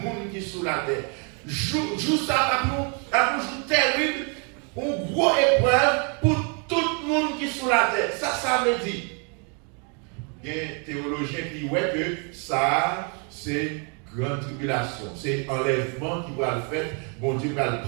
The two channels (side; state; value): left; quieter; 37.3 dB